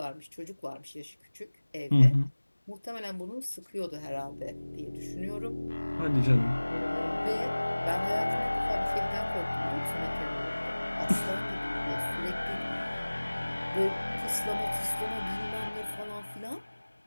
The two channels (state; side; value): inverted; both; correlation -1.00